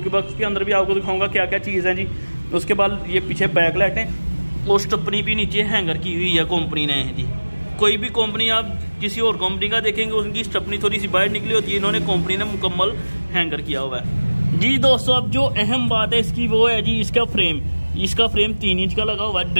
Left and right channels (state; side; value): inverted; both; correlation -1.00